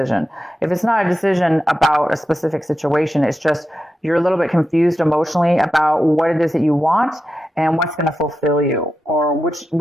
If it's not a decision about a specific situation, it's just you're a little bit confused emotionally about what it is that you want and what's going to fulfill you, or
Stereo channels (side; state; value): both; normal; correlation 0.90